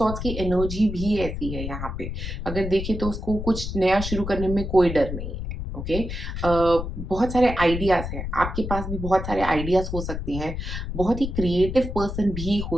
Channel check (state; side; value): noise; left; rumble, 6 dB below the sound